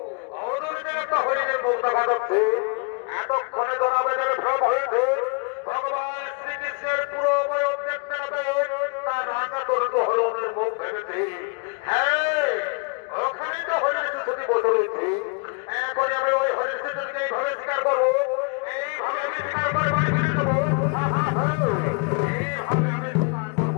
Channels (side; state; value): right; quieter; 34.6 dB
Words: অদূরে একটা হরিণের মুখ দেখা যাচ্ছে। এতক্ষণে জনাবেদের ভ্রম হয়েছে ভগবান শ্রীকৃষ্ণের পুরো বয়স দেখতে হবে তার রান্না তরুণ হরণের মুখ ভেবেছে। হ্যাঁ, ওখানে তো হরিণ শিশুটি বসে রয়েছে। এখন আমি ওই হরিণ শিশুটিকে এইভাবে স্বীকার করবো, এইভাবে আমি স্বীকার করে বাড়ি ফিরে যাবো। এইভাবে আমি স্বীকার